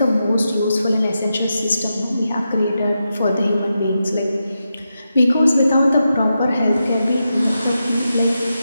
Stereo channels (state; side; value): inverted; both; correlation -0.88